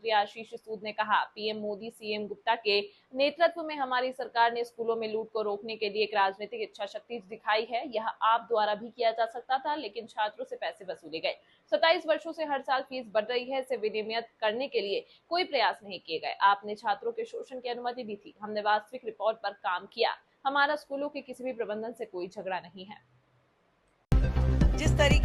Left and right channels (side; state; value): both; identical; correlation 1.00